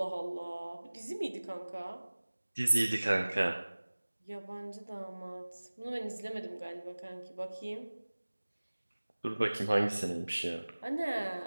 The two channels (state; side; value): inverted; both; correlation -1.00